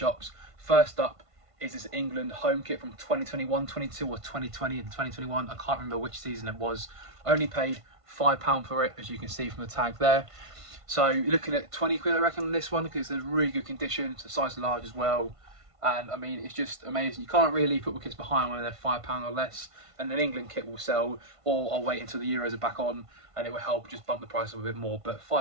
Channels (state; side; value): late; left; 1.5 ms